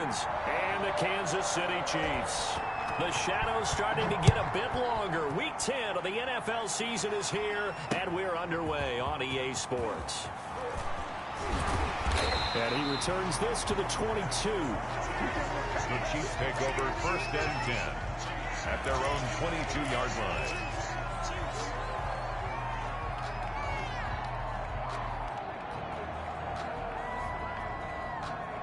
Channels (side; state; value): both; identical; correlation 1.00